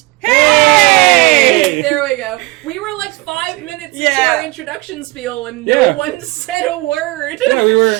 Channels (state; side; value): quieter; left; 22.5 dB